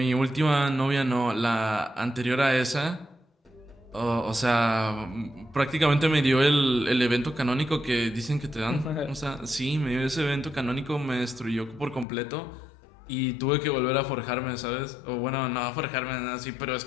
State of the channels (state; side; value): drops out; right; at 12.1 s